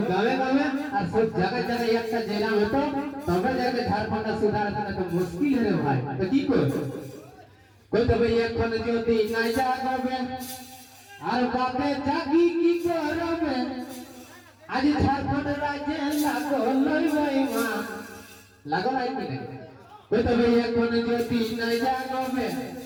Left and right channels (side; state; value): both; identical; correlation 1.00